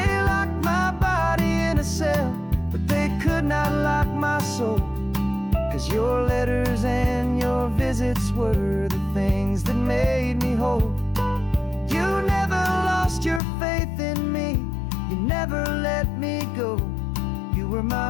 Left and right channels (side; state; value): right; drops out; at 13.4 s